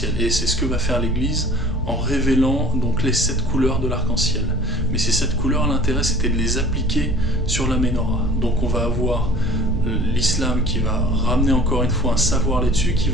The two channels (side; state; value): both; normal; correlation 0.47